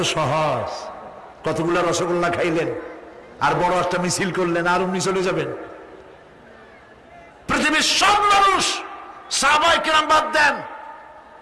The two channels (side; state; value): both; identical; correlation 1.00